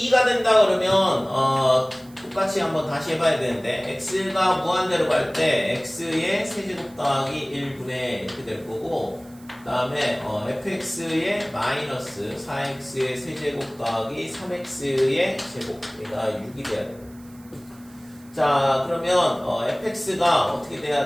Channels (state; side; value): noise; right; hiss, 26 dB below the sound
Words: 2가 된다 그러면 똑같이 한번 다시 해봐야 되는데 x가 무한대로 갈 때 x의 세제곱 더하기 1분의 이렇게 될 거고 그 다음에 fx의 마이너스 4x의 세제곱 더하기 3x의 제곱 얘가 6이 돼야 돼요. 자 그러면 fx가 어떻게